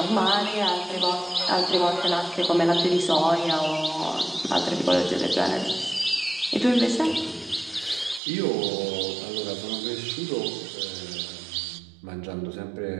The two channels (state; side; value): drops out; left; at 8.2 s